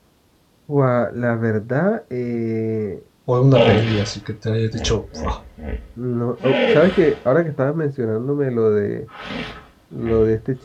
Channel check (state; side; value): identical; both; correlation 1.00